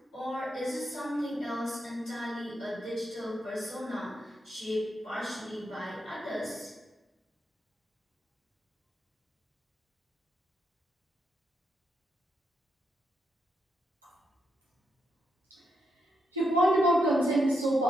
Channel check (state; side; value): normal; both; correlation 0.82